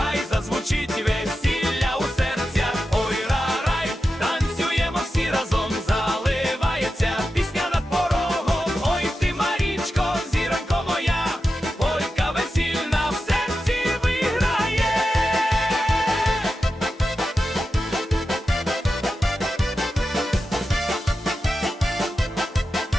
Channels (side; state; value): both; normal; correlation 0.91